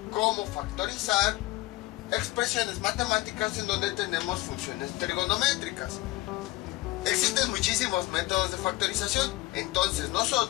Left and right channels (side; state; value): right; quieter; 20.2 dB